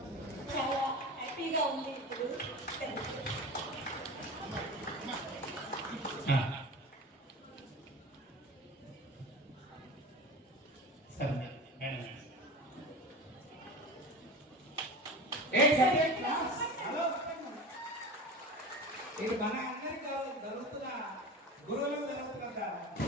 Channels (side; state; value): both; normal; correlation 0.32